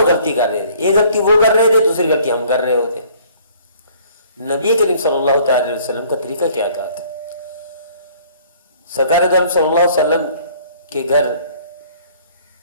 غلطی کر رہے تھے، یہ غلطی وہ کر رہے تھے، دوسری غلطی ہم کر رہے ہوتے۔ نبی کریم صلی اللہ تعالی علیہ وسلم کا طریقہ کیا تھا؟ سرکار دو عالم صلی اللہ علیہ وسلم کے گھر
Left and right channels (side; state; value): both; inverted; correlation -0.57